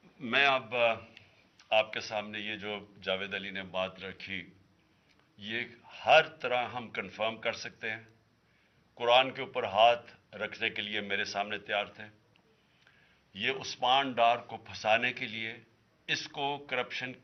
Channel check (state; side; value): identical; both; correlation 1.00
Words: میں اب آپ کے سامنے یہ جو جاوید علی نے بات رکھی، یہ ہر طرح ہم کنفرم کر سکتے ہیں. قرآن کے اوپر ہاتھ رکھنے کے لیے میرے سامنے تیار تھے. یہ عثمان ڈار کو پھنسانے کے لیے، اس کو کرپشن